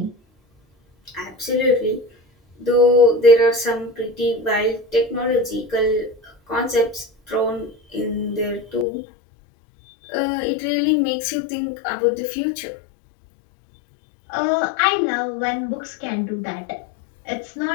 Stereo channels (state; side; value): drops out; right; at 8.8 s